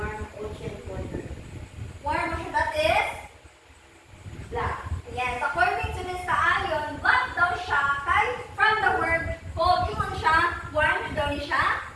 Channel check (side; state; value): both; identical; correlation 1.00